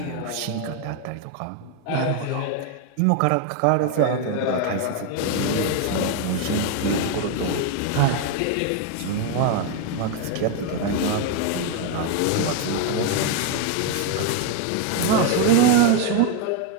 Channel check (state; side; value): different; both; correlation 0.01